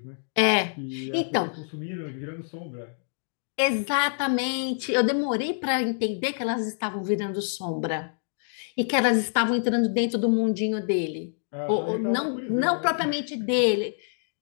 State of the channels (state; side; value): silent; right; digital silence